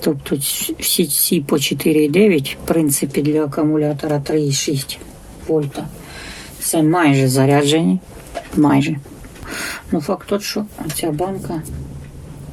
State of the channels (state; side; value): identical; both; correlation 1.00